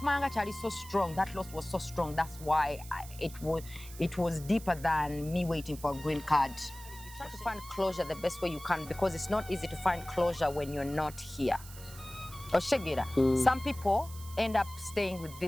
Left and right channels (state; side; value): noise; right; hiss, 16 dB below the sound